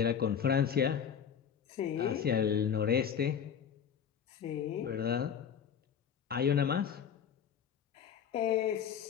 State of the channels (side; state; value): right; quieter; 8.0 dB